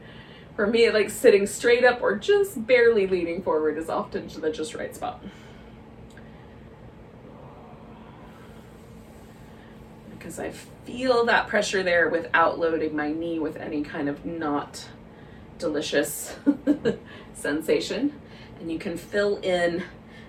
For me, like sitting straight up or just barely leaning forward is often the just right spot. Because I feel that pressure there without loading my knee with any kind of not delicious sensation. And you can fill in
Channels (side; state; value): both; identical; correlation 1.00